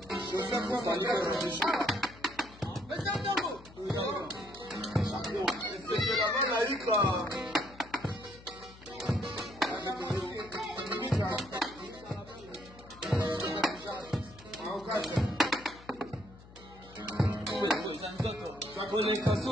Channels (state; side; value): noise; left; hum, 20 dB below the sound